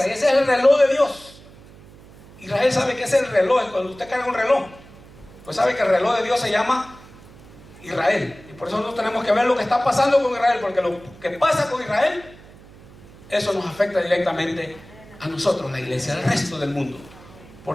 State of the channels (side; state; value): right; noise; hum, 21 dB below the sound